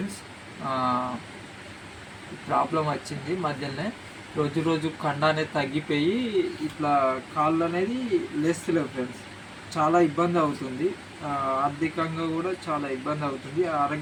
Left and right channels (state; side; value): identical; both; correlation 1.00